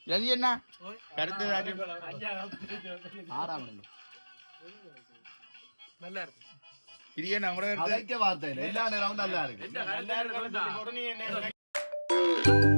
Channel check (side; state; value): both; inverted; correlation -1.00